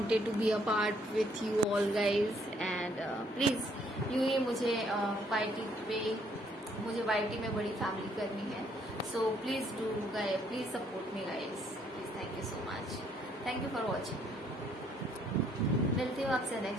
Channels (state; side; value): normal; both; correlation 0.67